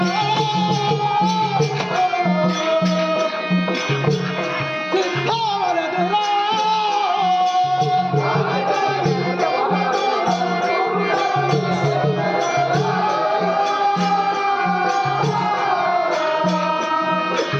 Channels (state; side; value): identical; both; correlation 1.00